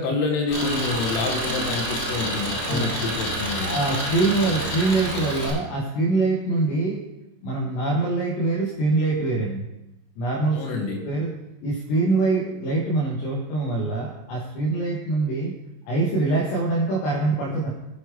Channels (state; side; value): late; right; 26 ms